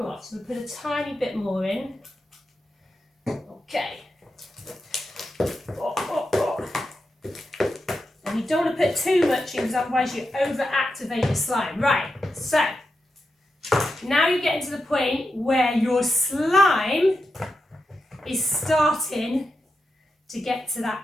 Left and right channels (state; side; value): normal; both; correlation 0.88